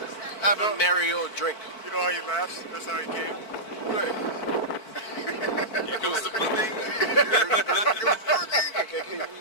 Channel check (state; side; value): late; right; 4.5 ms